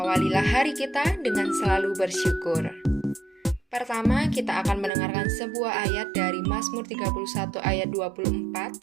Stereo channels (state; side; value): drops out; left; at 4.9 s